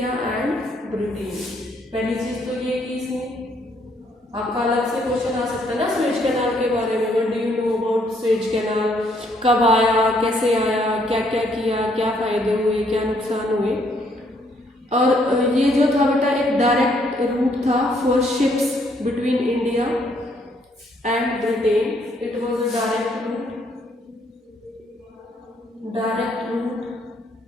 and British. पहली चीज तो ये कि इसने, आपका अलग से क्वेश्चन आ सकता है ना स्वेज कैनाल के बारे में, what do you know about Suez canal, कब आया, कैसे आया, क्या क्या किया, क्या फायदे हुए, क्या नुकसान हुए। और ये जो था बेटा एक डायरेक्ट रूट था for ships between India and Britain, it was a direct route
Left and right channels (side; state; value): both; normal; correlation 0.69